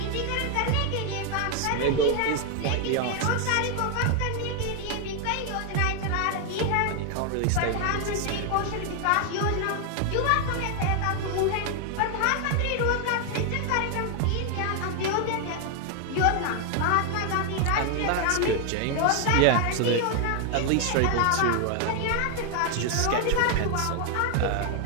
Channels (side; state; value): both; different; correlation 0.01